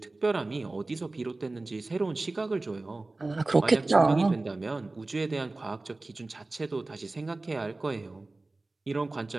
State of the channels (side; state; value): left; quieter; 3.1 dB